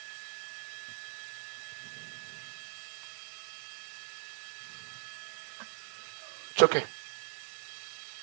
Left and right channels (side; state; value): left; silent; 51 dB below the other